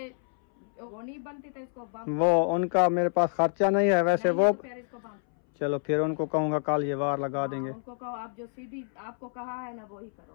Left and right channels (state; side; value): silent; right; 59 dB below the other